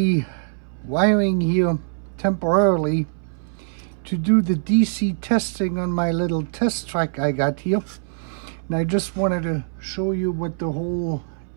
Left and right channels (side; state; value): left; silent; 62 dB below the other